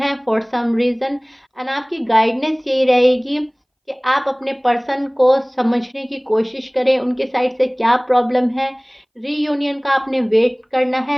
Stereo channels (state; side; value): identical; both; correlation 1.00